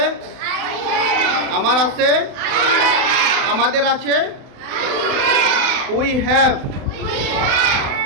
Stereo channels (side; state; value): left; late; 31 ms